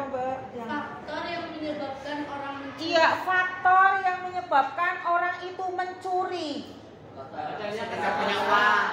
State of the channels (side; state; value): both; identical; correlation 1.00